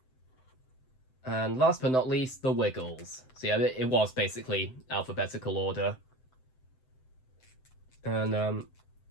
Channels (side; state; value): right; late; 7.8 ms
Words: And last but not least, the Wiggles. So yeah, it was basically alphabetical order. And